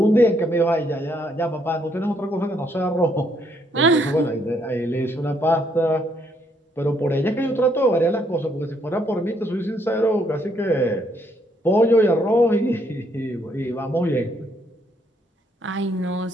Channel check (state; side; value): normal; both; correlation 0.71